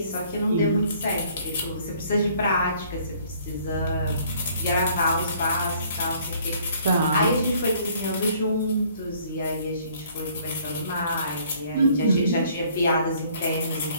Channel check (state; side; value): inverted; both; correlation -0.59